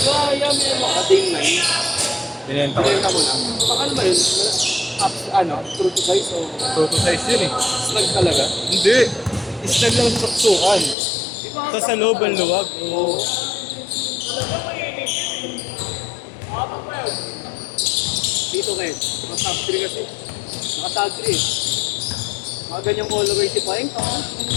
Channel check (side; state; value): right; drops out; at 11.0 s